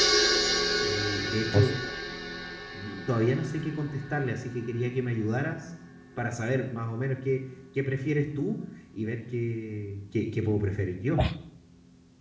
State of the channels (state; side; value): identical; both; correlation 1.00